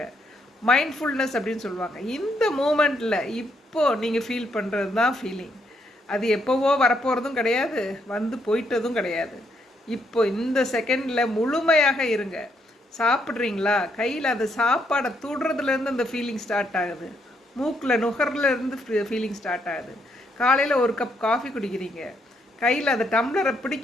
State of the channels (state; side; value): normal; both; correlation 0.75